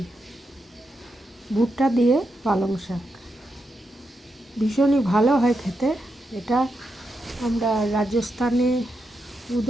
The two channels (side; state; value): both; normal; correlation 0.85